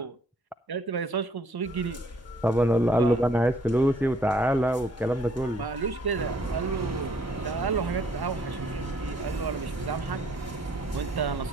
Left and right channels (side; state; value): both; normal; correlation 0.63